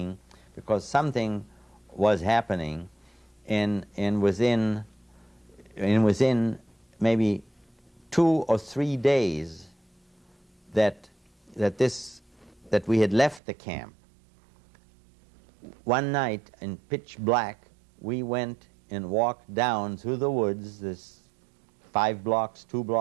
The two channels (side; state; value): left; drops out; at 13.4 s